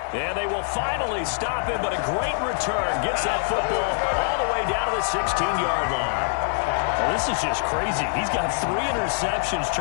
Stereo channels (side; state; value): right; silent; digital silence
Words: And they will finally stop him, but a great return. Gets that football all the way down to the 16-yard line. Well, this is just crazy. He's got 3 interceptions,